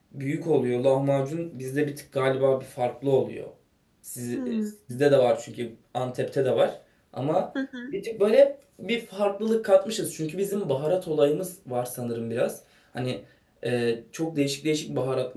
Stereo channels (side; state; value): both; identical; correlation 1.00